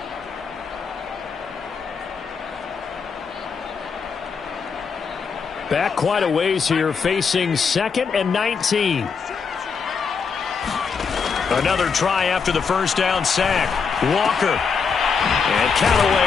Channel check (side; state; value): right; quieter; 5.7 dB